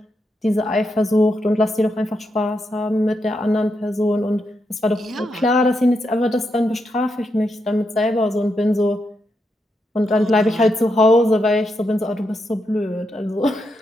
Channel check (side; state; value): both; normal; correlation 0.83